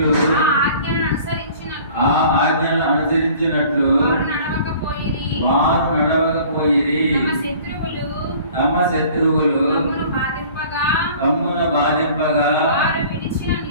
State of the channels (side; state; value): both; inverted; correlation -0.49